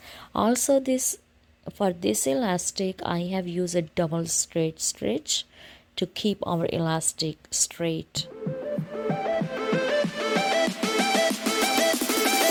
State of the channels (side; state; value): both; identical; correlation 1.00